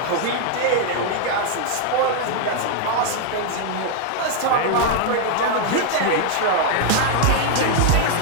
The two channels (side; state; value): both; different; correlation 0.00